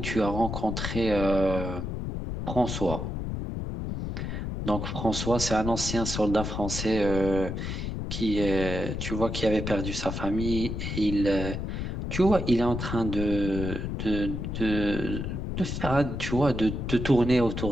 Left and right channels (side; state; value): left; noise; rumble, 4 dB below the sound